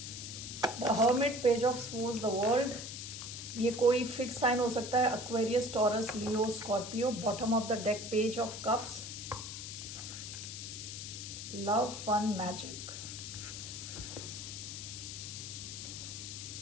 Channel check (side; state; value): left; noise; hiss, 8 dB below the sound